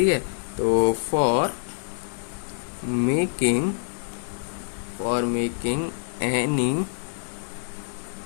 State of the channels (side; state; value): right; silent; digital silence